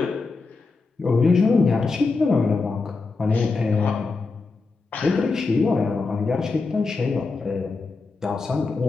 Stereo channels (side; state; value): right; quieter; 4.0 dB